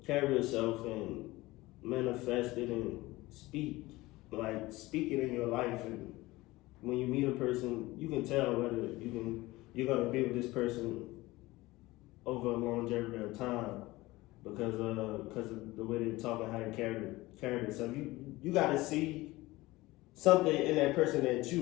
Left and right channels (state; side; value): quieter; right; 19.7 dB